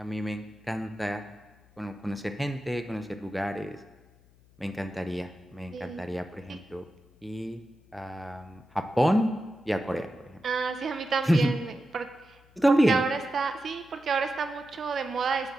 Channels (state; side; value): noise; left; hum, 28 dB below the sound